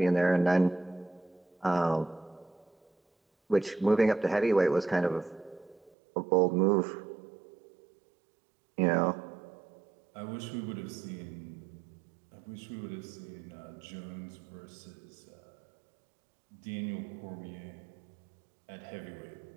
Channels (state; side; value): drops out; left; at 5.9 s